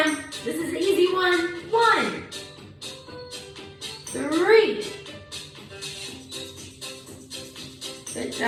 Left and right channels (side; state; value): both; identical; correlation 1.00